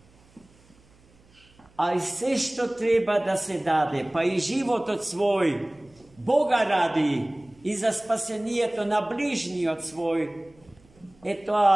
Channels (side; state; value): right; noise; hum, 30 dB below the sound